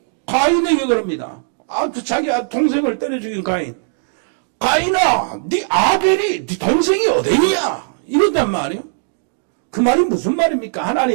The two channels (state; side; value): silent; left; digital silence